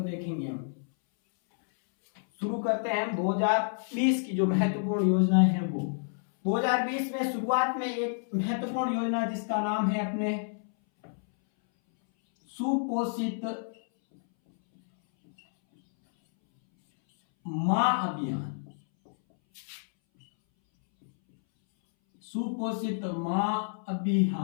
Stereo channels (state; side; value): silent; right; 59 dB below the other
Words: देखेंगे हम। शुरू करते हैं हम 2020 की जो महत्वपूर्ण योजनाएं हैं वो। 2020 में शुरुआत में एक महत्वपूर्ण योजना जिसका नाम है अपने सुपोषित मां अभियान। सुपोषित मां